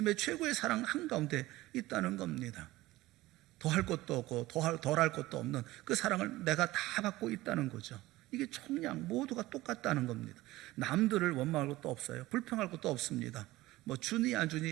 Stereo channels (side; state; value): left; quieter; 18.0 dB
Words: 최고의 사랑 한가운데 있다는 겁니다. 더할 것도 없고 덜할 것도 없는 그 사랑을 내가 다 받고 있다는 거죠. 이게 총량 모두가 똑같다는 겁니다. 남들을 원망할 것도 없어요. 불평할 것도 없습니다. 뭐 주니 안